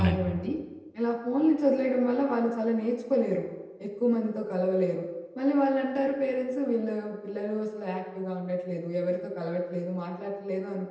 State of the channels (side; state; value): both; identical; correlation 1.00